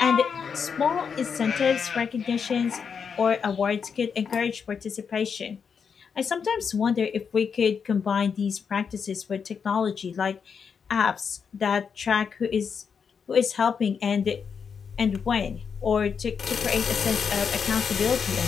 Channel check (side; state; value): right; quieter; 6.4 dB